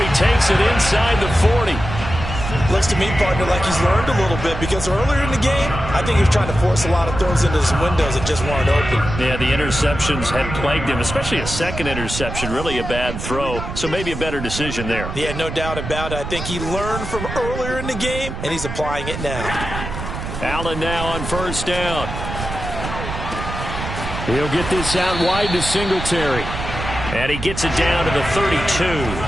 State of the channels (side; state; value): right; noise; rumble, 7 dB below the sound